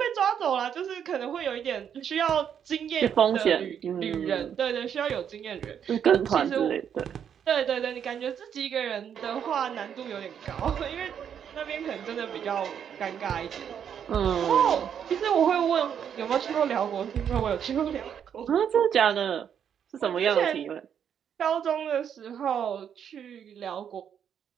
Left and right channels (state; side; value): quieter; left; 8.4 dB